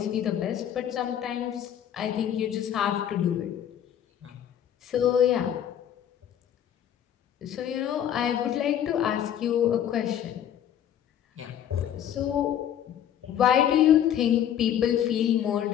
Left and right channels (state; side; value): quieter; right; 10.1 dB